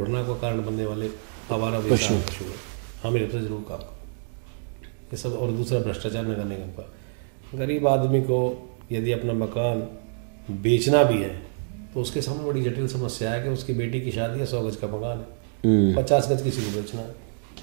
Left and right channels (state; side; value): silent; left; digital silence